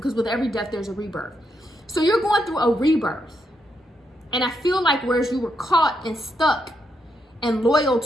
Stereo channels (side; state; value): both; normal; correlation 0.81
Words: with every death, there's a rebirth. So you're going through a rebirth. And I feel like whereas you were caught and stuck and loyal